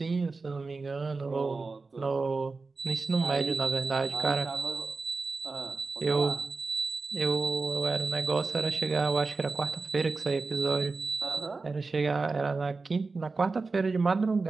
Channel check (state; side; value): quieter; left; 4.0 dB